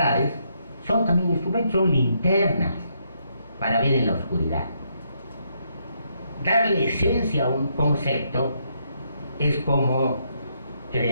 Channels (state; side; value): inverted; both; correlation -0.75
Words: son también instrumentos, son linternas para ver en la oscuridad. darle esencia a un concepto es como